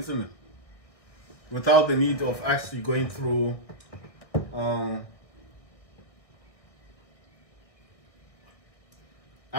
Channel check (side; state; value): right; late; 1.6 ms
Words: it? Without the need of actually going through